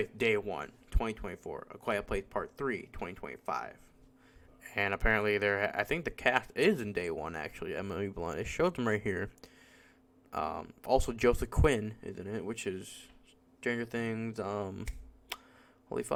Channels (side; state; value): both; identical; correlation 1.00